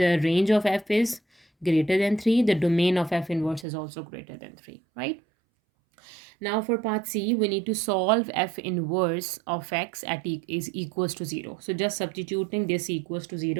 range of f is greater than 3, the domain of f inverse is also greater than 3, right? Now for part C, we need to solve f inverse of x at is equals to 0. So just substituting this equals to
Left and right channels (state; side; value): drops out; left; at 3.7 s